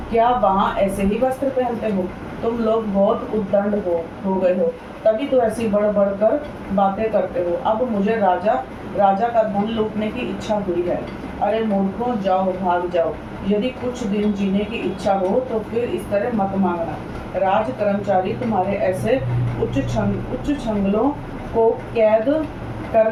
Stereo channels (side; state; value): both; identical; correlation 1.00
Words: क्या वहाँ ऐसे ही वस्त्र पहनते हो? तुम लोग बहुत उद्दंड हो गए हो, तभी तो ऐसी बढ़ बढ़ कर बातें करते हो। अब मुझे राजा का धन लूटने की इच्छा हुई है। अरे मूर्खों, जाओ, भाग जाओ। यदि कुछ दिन जीने की इच्छा हो तो फिर इस तरह मत मांगना। राज कर्मचारी तुम्हारे ऐसे उच्च छंगलों को कैद कर